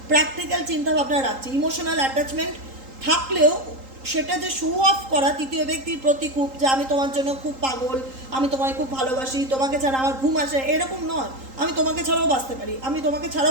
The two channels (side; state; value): left; late; 3.8 ms